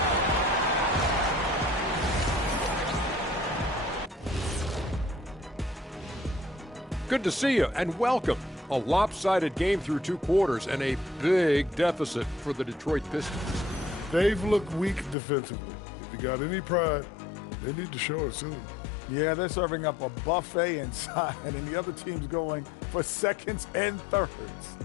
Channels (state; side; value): drops out; right; at 15.2 s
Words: Good to see you and welcome. A lopsided game through two quarters and a big deficit for the Detroit Pistons. They've looked weak defensively. If you got any pride, they need to show it soon. Yeah, they're serving up a buffet inside, and the other team's going for seconds and thirds.